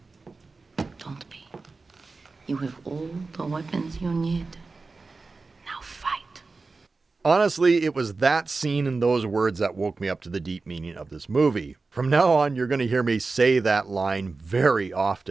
Don't be. You have all the weapons you need. Now fight. Honestly, it was that scene and those words that woke me up to the deep meaning of this movie. From now on, you're going to hear me say that line very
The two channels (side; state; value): left; quieter; 3.9 dB